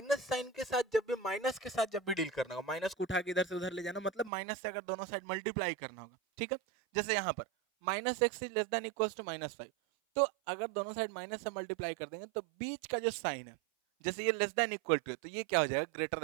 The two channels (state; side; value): drops out; left; at 4.3 s